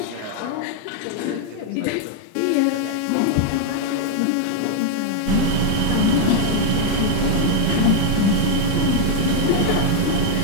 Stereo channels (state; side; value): different; both; correlation 0.00